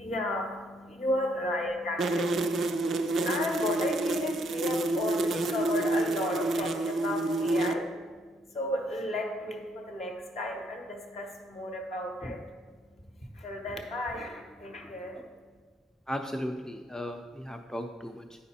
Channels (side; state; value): both; normal; correlation 0.70